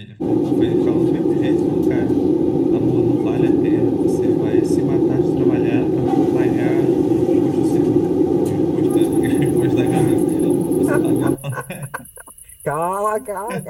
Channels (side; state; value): both; identical; correlation 1.00